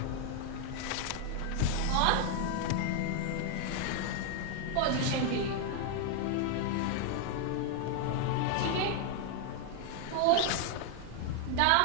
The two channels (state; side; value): different; both; correlation 0.00